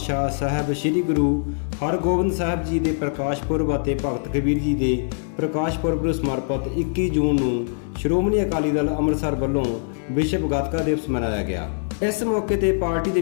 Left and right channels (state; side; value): silent; right; 62 dB below the other